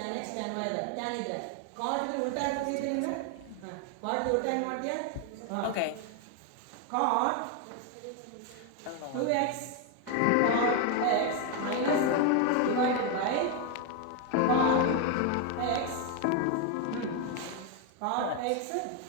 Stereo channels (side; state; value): both; different; correlation 0.01